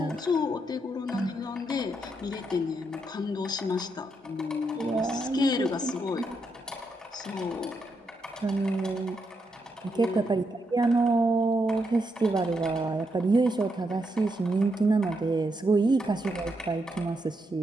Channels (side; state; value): both; normal; correlation 0.81